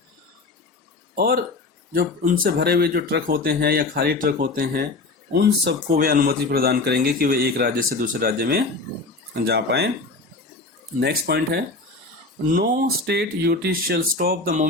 और जो उनसे भरे हुए जो ट्रक होते हैं या खाली ट्रक होते हैं, उन सबको वे अनुमति प्रदान करेंगे कि वे एक राज्य से दूसरे राज्य में जा पाए। नेक्स्ट पॉइंट है no state UT shall stop the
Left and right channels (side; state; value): right; quieter; 3.5 dB